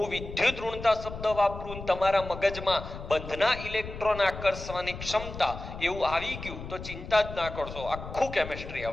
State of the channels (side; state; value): left; noise; rumble, 11 dB below the sound